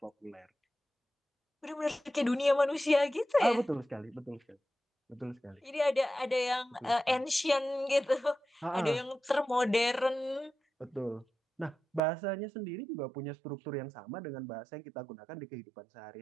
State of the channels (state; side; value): drops out; left; at 12.0 s